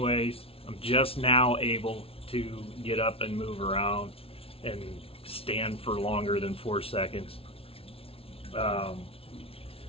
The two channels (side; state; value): right; late; 0.27 ms